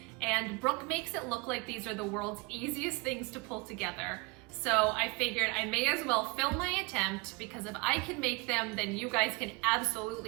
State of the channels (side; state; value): left; quieter; 27.3 dB